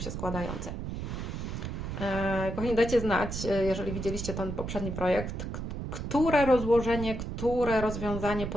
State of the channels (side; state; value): right; noise; rumble, 5 dB below the sound